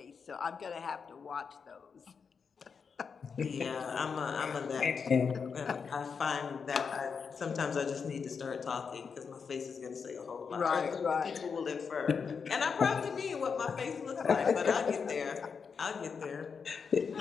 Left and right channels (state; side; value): quieter; right; 5.9 dB